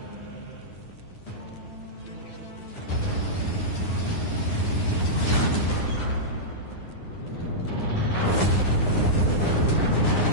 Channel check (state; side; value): late; right; 9.7 ms